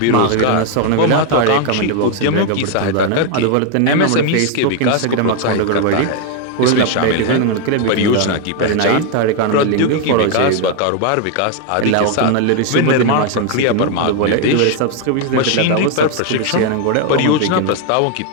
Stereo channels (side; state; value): both; different; correlation 0.01